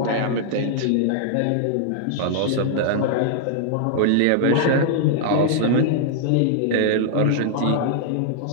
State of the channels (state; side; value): different; both; correlation -0.01